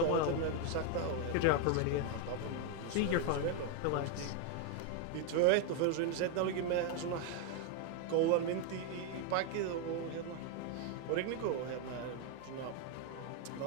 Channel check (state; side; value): different; both; correlation 0.01